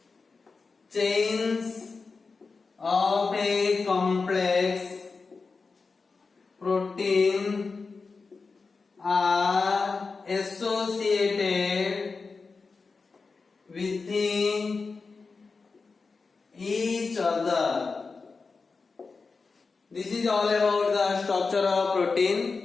chains of a complex protein are associated within each other. This is all about the structure of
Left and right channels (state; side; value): quieter; right; 4.4 dB